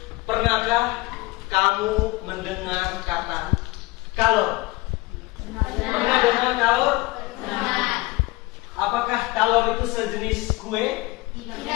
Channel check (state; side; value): quieter; right; 22.3 dB